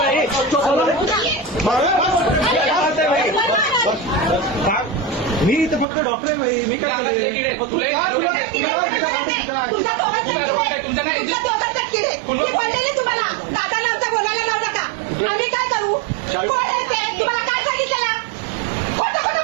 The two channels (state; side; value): drops out; left; at 5.9 s